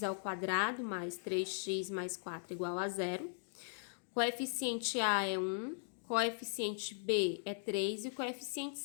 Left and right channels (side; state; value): right; silent; digital silence